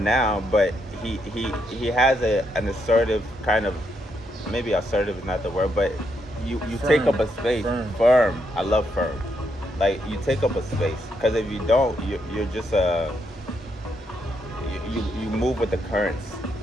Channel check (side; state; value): both; normal; correlation 0.78